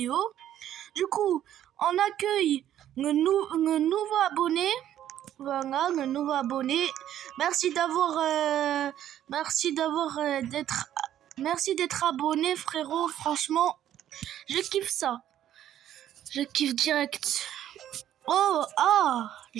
Du coup, on accueille le nouveau abonné. Voilà, le nouveau abonné. Merci d'être abonné, frérot. Franchement, je kiffe ça. Je kiffe direct. Oh,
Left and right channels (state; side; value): quieter; left; 11.4 dB